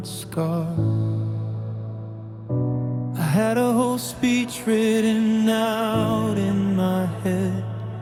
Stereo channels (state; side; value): identical; both; correlation 1.00